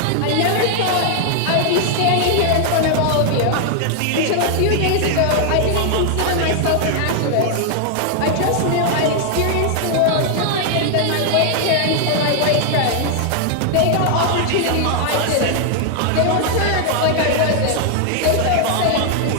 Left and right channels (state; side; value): different; both; correlation 0.00